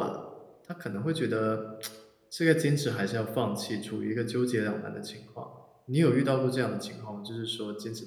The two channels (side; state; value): both; identical; correlation 1.00